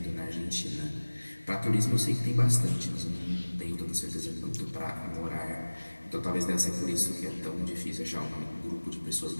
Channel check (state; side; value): inverted; both; correlation -1.00